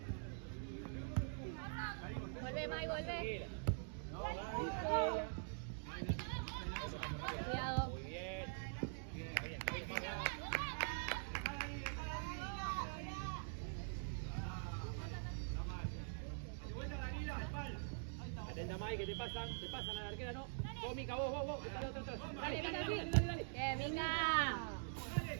Vuelve, Mai, vuelve. Cuidado. Muy bien. Atenta, Mai, que te pasan a la arquera, ¿no? Vos, Mica, vos. Dale. Bien, Mica.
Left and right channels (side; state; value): left; silent; digital silence